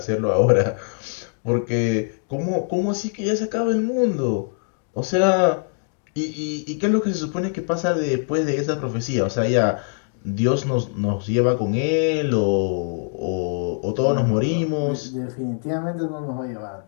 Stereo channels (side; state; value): right; silent; digital silence